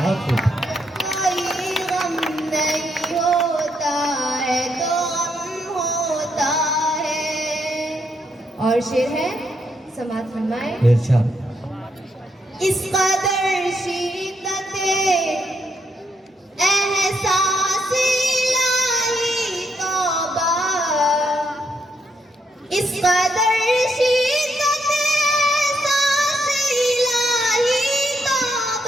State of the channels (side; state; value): both; normal; correlation 0.77